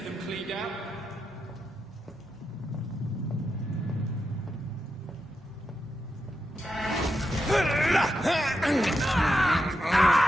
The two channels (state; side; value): normal; both; correlation 0.86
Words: them cleaned out.